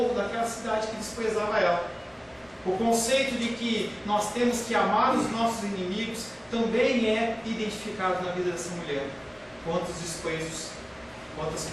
daquela cidade que desprezava ela. O conceito de que nós temos que amar os nossos inimigos também é identificado na vida dessa mulher. Quantos desprezos, quantas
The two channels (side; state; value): both; identical; correlation 1.00